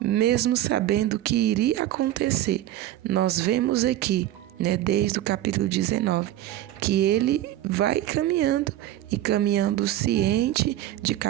sabendo que iria acontecer, nós vemos aqui, desde o capítulo 19, que ele vai caminhando e caminhando ciente, de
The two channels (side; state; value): left; quieter; 13.5 dB